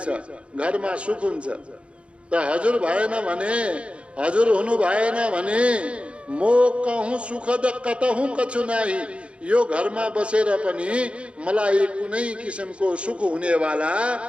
घरमा सुख हुन्छ। त हजुर भएन भने, हजुर हुनु भएन भने, मोकहूँ सुखद कतहूँ कछु नाही। यो घरमा बसेर पनि मलाई कुनै किसिमको सुख हुनेवाला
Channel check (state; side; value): late; left; 0.059 ms